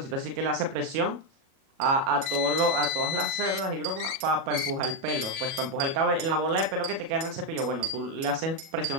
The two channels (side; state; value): left; late; 37 ms